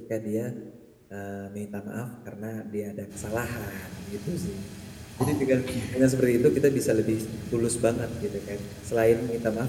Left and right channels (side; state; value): both; identical; correlation 1.00